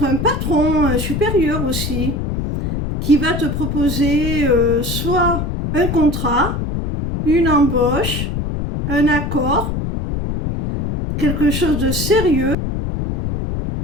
un patron, un supérieur aussi, qui va te proposer soit un contrat, une embauche, un accord, quelque chose de sérieux,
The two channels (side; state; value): left; noise; rumble, 3 dB below the sound